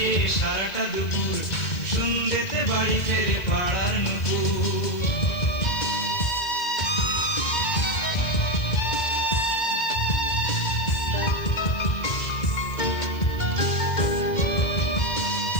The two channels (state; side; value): late; right; 1.9 ms